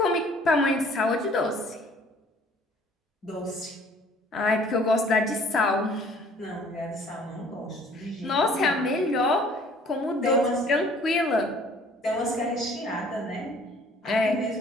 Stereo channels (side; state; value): both; normal; correlation 0.55